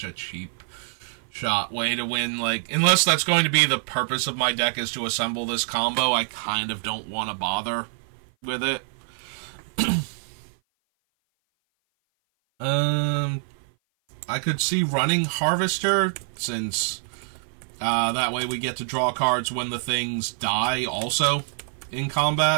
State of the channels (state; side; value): silent; left; 56 dB below the other